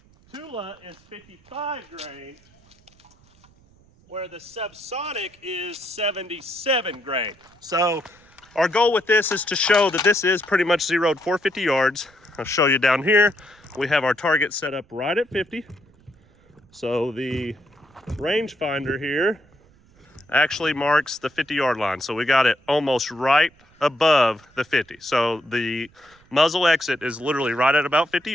Tula is 55 grain, where the Subsonic is 77 grain. So our goal with this is to show that this is pretty much zeroed 450 yards. I'll show you down here. We have our target set up right at 50. So the rangefinder here actually marks the 50-yard line. So we got it almost right above the 50. So the muzzle exit is literally right at about 50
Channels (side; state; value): right; noise; rumble, 30 dB below the sound